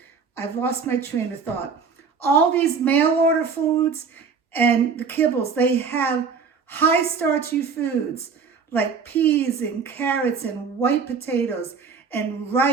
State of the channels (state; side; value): quieter; left; 5.6 dB